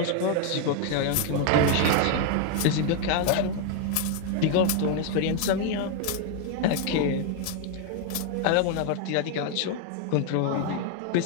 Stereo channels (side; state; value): both; different; correlation 0.01